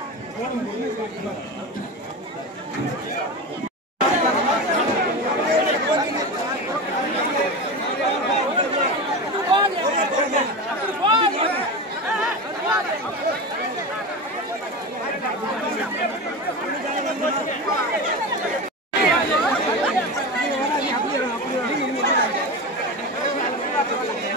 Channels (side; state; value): both; normal; correlation 0.23